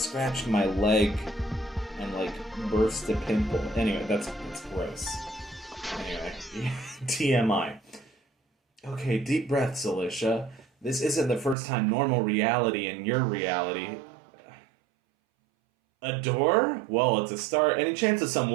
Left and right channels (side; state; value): left; drops out; at 11.6 s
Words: my leg and like burst a pimple. Anyway, that's gross. Anyway, TMI. Okay, deep breaths, Alicia. This isn't the first time normal reality in your reality. A door? Well, it's a start. Any chance of some